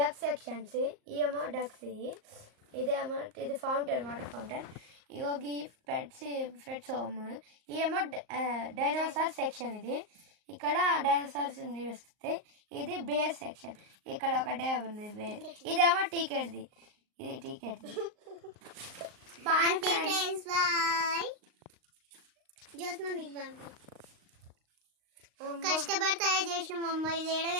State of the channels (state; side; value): late; left; 38 ms